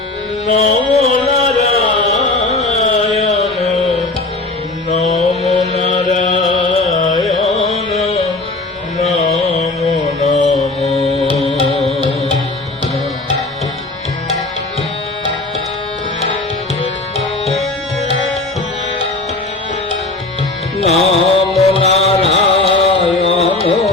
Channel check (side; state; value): right; quieter; 3.0 dB